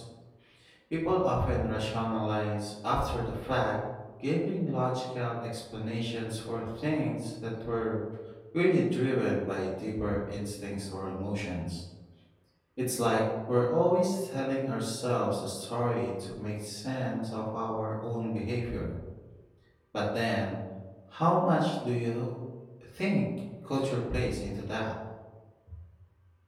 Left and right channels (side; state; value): both; identical; correlation 1.00